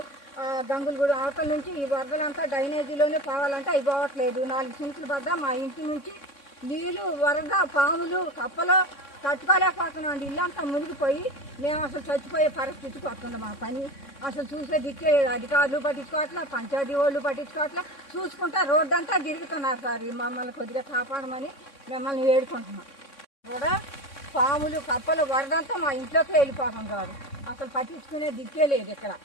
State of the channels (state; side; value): late; right; 3.6 ms